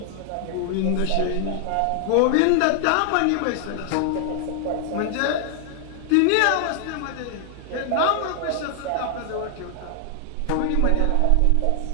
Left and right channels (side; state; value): both; different; correlation 0.00